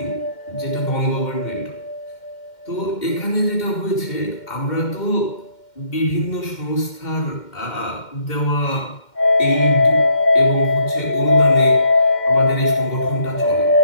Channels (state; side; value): late; right; 2.1 ms